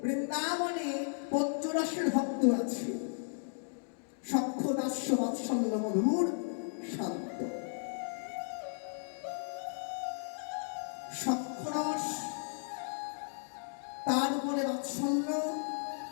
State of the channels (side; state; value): right; silent; digital silence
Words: বৃন্দাবনে পঞ্চরসের ভক্ত আছে। সখ্য দাস্য বাৎসল্য মধুর শান্ত। সখ্যরস, তার উপরে বাৎসল্য,